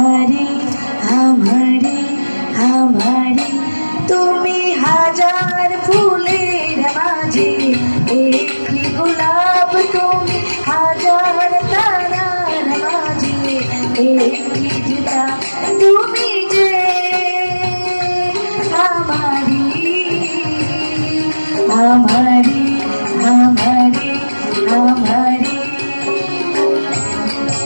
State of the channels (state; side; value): inverted; both; correlation -1.00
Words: আমারি আমারি তুমি হাজার ফুলের মাঝে একটি গোলাপ তুমি, হাজার তারার মাঝে একটি যে চাঁদ তুমি যে আমারি আমারি আমারি আমারি।